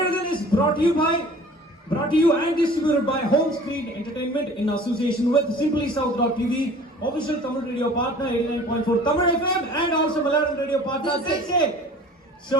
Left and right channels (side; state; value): both; normal; correlation 0.46